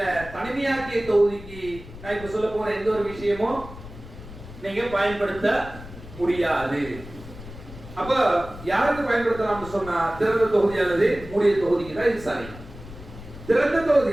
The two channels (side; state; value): left; noise; rumble, 15 dB below the sound